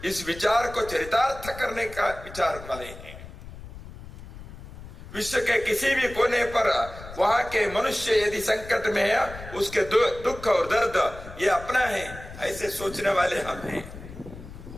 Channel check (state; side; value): noise; left; rumble, 14 dB below the sound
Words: इस विचार को चरितार्थ करने का विचार वाले हैं। विश्व के किसी भी कोने पर वहां के मनुष्य यदि संकट में है, उसके दुख और दर्द ये अपना है, ऐसे सोचने वाले हम हैं।